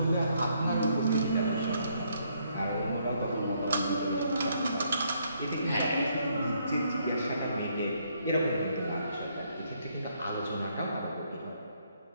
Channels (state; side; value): inverted; both; correlation -0.71